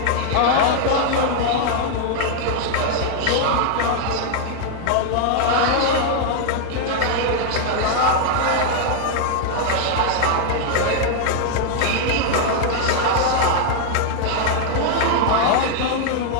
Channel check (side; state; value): both; different; correlation 0.00